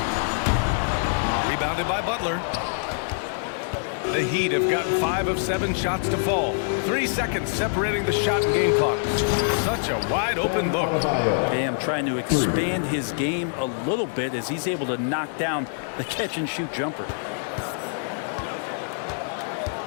Rebounded by Butler. The Heat have gotten 5 of 7 shots to fall. 3 seconds separating the shot and game clocks. Such a wide open look. Bam trying to expand his game a little bit as he's able to knock down the catch and shoot jumper.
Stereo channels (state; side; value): silent; right; digital silence